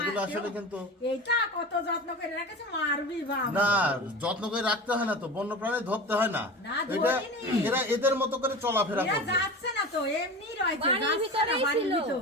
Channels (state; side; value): normal; both; correlation 0.31